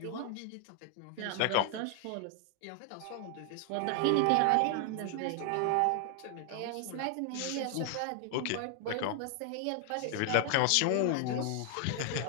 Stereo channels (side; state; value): both; different; correlation 0.00